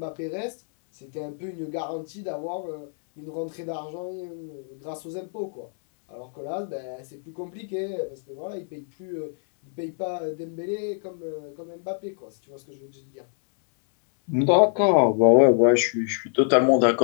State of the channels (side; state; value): right; silent; 61 dB below the other